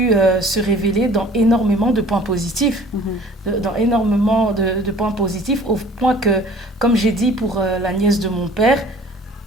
se révéler dans énormément de points positifs. Dans énormément de points positifs, au point que, comme j'ai dit pour la nièce de mon père,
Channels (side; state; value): both; normal; correlation 0.50